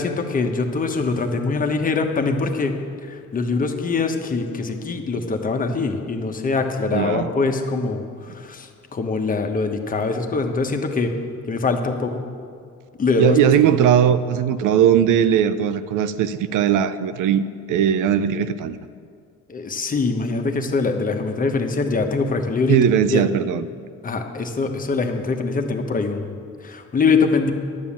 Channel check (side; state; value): both; normal; correlation 0.28